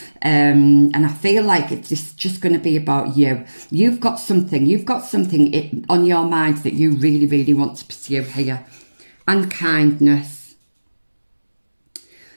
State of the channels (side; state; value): both; inverted; correlation -1.00